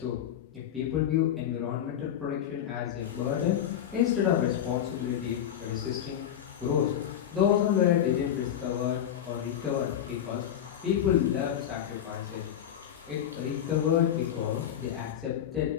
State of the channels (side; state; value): right; quieter; 10.1 dB